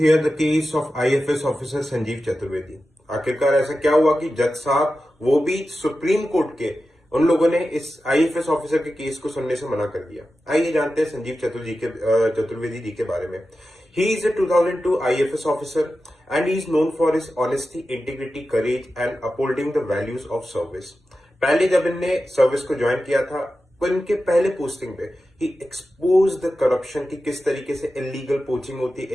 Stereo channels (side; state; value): both; normal; correlation 0.92